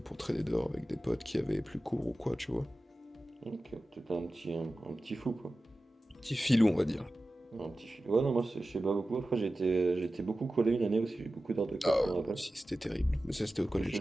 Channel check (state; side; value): normal; both; correlation 0.95